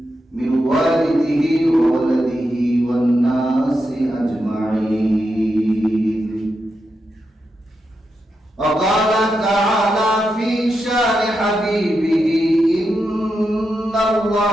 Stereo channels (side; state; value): both; normal; correlation 0.86